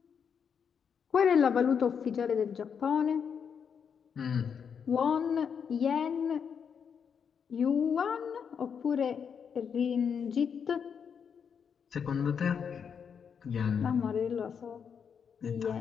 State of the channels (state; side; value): quieter; right; 7.0 dB